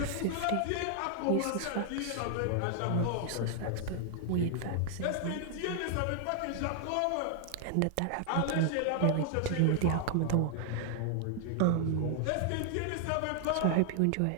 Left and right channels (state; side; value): different; both; correlation 0.00